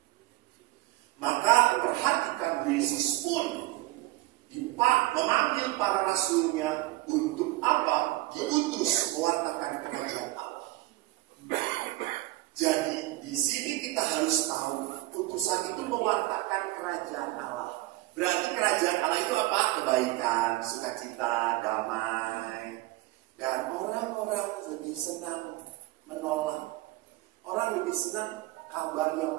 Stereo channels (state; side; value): quieter; left; 18.6 dB